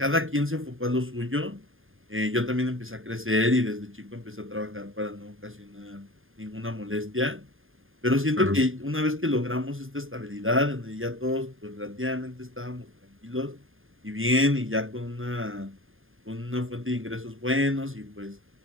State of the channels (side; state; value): left; late; 0.59 ms